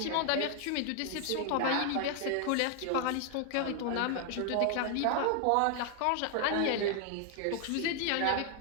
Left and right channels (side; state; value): both; different; correlation 0.00